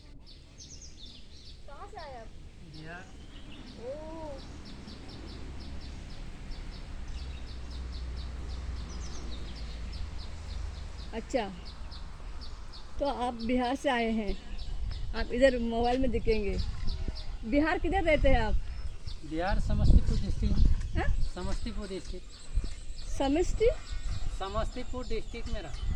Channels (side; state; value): both; identical; correlation 1.00